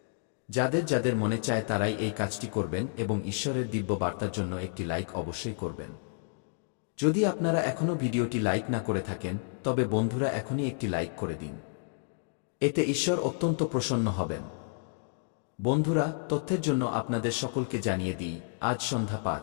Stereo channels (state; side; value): silent; right; digital silence